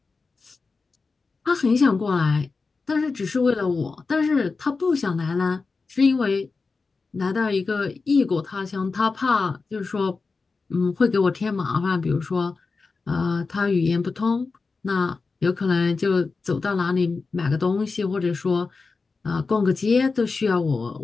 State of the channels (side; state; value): right; quieter; 4.3 dB